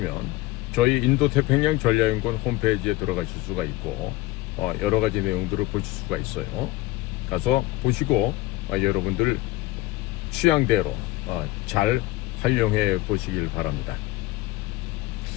저희 인도태평양 전략연구원 홈페이지에 들어가실 수가 있고 여러 가지 내용들을 보실 수가 있어요. 가서 보시고 여러분들 취향대로 잘 활용해 보시길 바랍니다.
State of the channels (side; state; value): right; quieter; 18.3 dB